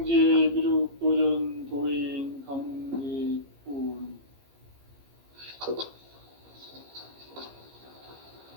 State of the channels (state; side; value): late; left; 15 ms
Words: 미륵도전 도인 강대군.